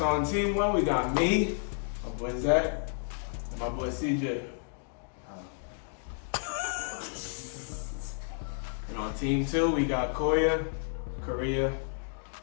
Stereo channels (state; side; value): silent; right; 57 dB below the other